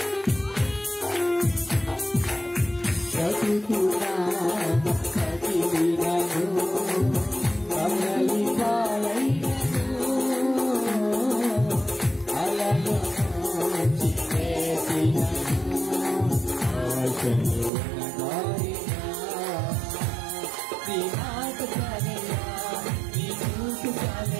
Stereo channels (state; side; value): drops out; left; at 17.7 s